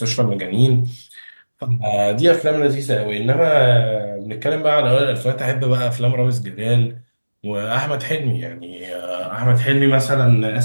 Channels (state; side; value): inverted; both; correlation -1.00